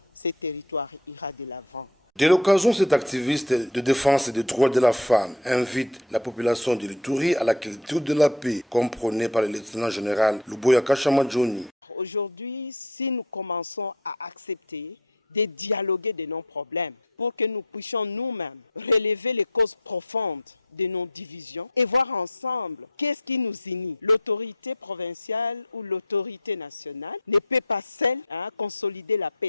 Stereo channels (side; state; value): both; normal; correlation 0.33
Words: ira de l'avant. De l'occasion, cet activiste de défense des droits de la femme invite la population de l'Ituri à la culture de la paix, comme prônée par le lieutenant général Luboyanka Chomodjouni. Aujourd'hui, si nous commençons à accepter de dialoguer de nos problèmes pour que nous puissions nous-mêmes relever les causes profondes de nos divisions et voir ensemble qu'est-ce qui nous unit. L'autorité provinciale ou l'autorité nationale ne peut pas seule consolider la